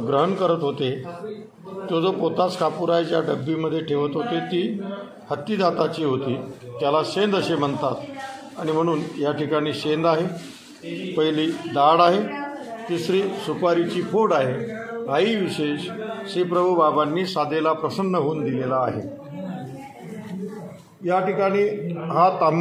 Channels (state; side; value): identical; both; correlation 1.00